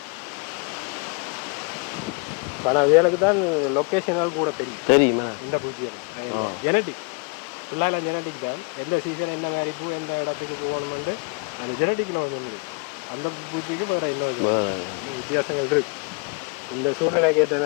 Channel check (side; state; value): right; quieter; 33.1 dB